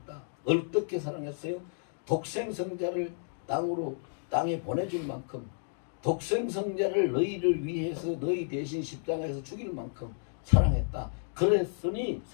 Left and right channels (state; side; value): silent; right; digital silence